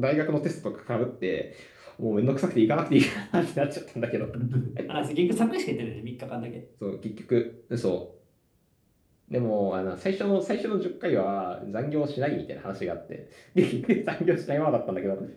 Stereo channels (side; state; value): both; identical; correlation 1.00